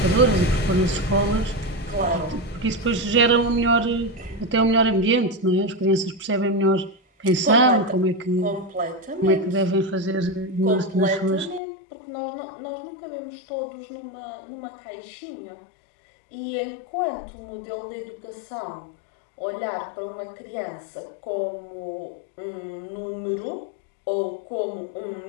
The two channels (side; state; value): right; drops out; at 11.6 s